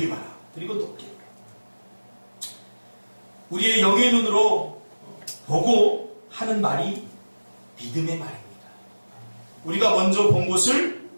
봐라. 그리고 높게 보라. 우리의 영의 눈으로 보고 하는 말이 믿음의 말입니다. 우리가 먼저 본 것을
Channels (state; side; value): inverted; both; correlation -1.00